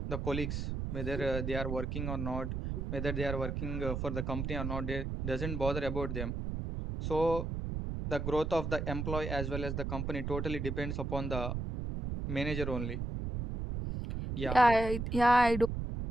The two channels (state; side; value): noise; right; rumble, 3 dB below the sound